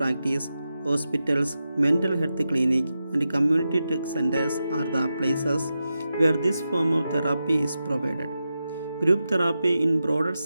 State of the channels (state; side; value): inverted; both; correlation -0.90